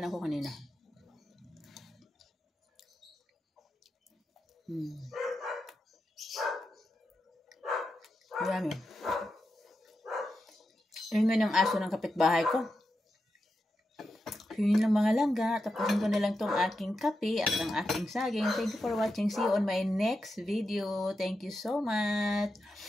na ako kanina. Marami. Ingay ng aso ng kapitbahay ko. yun lang mga langga. Tapusin ko na lang tong aking kape at ang aking saging. Thank you for watching. See you on my next video. Thank you so much.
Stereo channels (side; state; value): both; normal; correlation 0.88